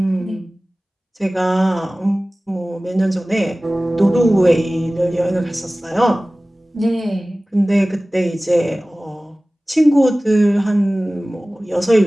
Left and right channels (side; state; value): both; normal; correlation 0.98